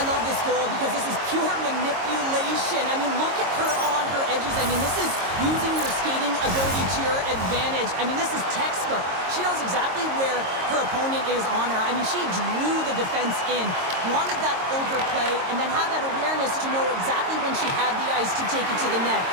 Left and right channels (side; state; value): left; late; 22 ms